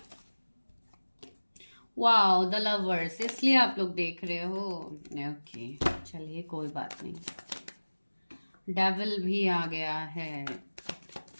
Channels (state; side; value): inverted; both; correlation -1.00